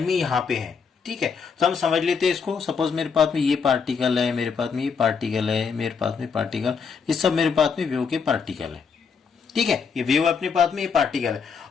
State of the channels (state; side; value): quieter; right; 5.9 dB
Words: में यहाँ पे है। ठीक है, तो हम समझ लेते हैं इसको। सपोज मेरे पास में ये पार्टिकल है, मेरे पास में ये पार्टिकल है, मेरे पास में पार्टिकल, ये सब मेरे पास में वेव के पार्टिकल है। ठीक है, ये वेव अपने पास में ये पार्टिकल है